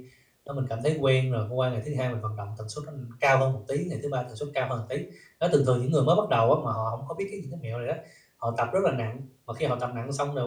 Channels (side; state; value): both; identical; correlation 1.00